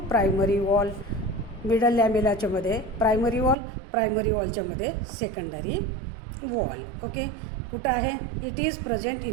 primary wall. Middle लॅमेलाच्या मध्ये प्रायमरी वॉल, प्रायमरी वॉलच्या मध्ये सेकंडरी वॉल. ओके, कुठं आहे, it is present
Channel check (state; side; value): drops out; left; at 3.6 s